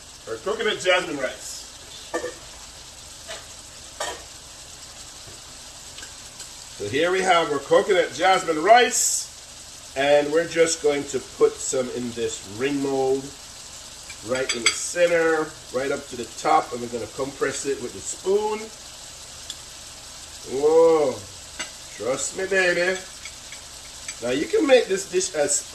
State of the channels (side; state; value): both; identical; correlation 1.00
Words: Or coconut jasmine rice. So here we have our coconut jasmine rice. And we're just going to put some in this ring mold. Right in the center. Right up to the top. And we're going to compress it with the spoon. Whoa. Trust me, baby. Now you can make this dish as